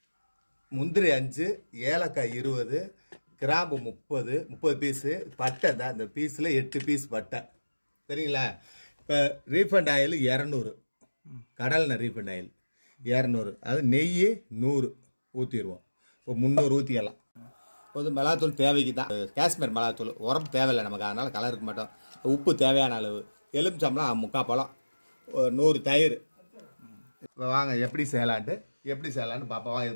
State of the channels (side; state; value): both; inverted; correlation -1.00